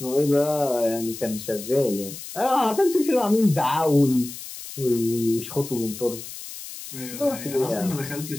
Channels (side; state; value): left; noise; hiss, 12 dB below the sound